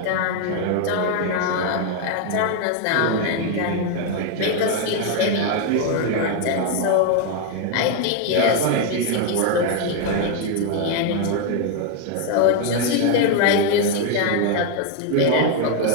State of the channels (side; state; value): both; different; correlation 0.01